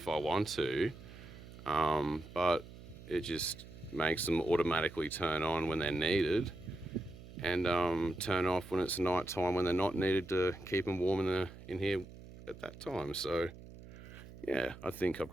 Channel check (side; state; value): right; noise; hum, 16 dB below the sound